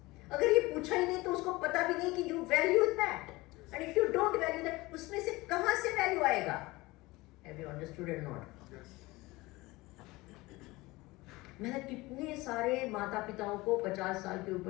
अगर ये पूछा ही नहीं तो उसको पता भी नहीं कि you value that, and if you don't value that, उसमें से कहां से वैल्यू आएगा? Have you understood or not? मैंने कितने सारे माता पिताओं को 50 साल के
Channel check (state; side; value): quieter; right; 21.1 dB